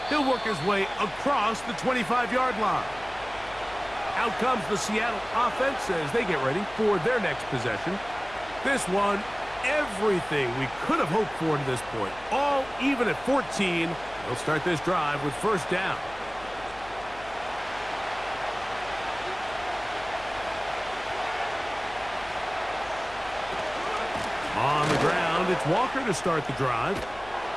He'll work his way across the 25-yard line. Out comes the Seattle offense as they get ready for their next possession. This one, everything we could have hoped for to this point. All even at 14. They'll start this drive with first down. On the ground, it's Walker to start the drive.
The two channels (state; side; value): noise; left; hum, 20 dB below the sound